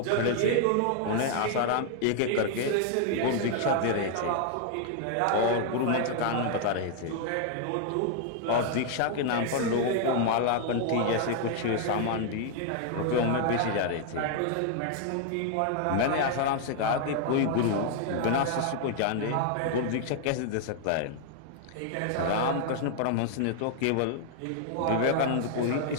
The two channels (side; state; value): both; different; correlation 0.00